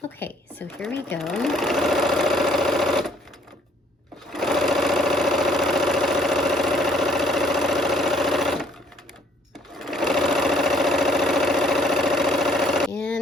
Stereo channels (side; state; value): both; normal; correlation 0.62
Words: Okay, so here we go.